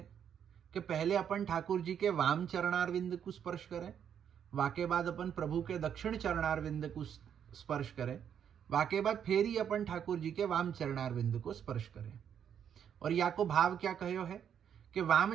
कि पहले अपन ठाकुर जी के वाम चरणारविंद को स्पर्श करें, वाके बाद अपन प्रभु के दक्षिण चरणारविंद को स्पर्श करें, वाके बाद फिर ही अपन ठाकुर जी के वाम चरणारविंद को स्पर्श करें। और या को भाव क्या कहो है कि वाम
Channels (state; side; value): quieter; left; 8.6 dB